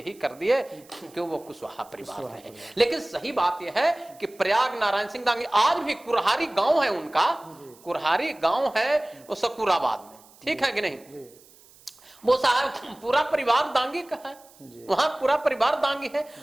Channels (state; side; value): noise; right; hiss, 26 dB below the sound